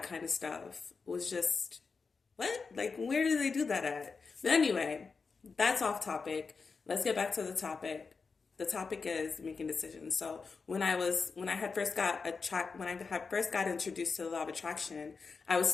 kind of stuff was just what? Like, where do they do that at? But anyway, that's off topic. Let's get back to the topic. The topic is making decisions. So when I had first got introduced to the law of attraction, I was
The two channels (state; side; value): quieter; right; 4.8 dB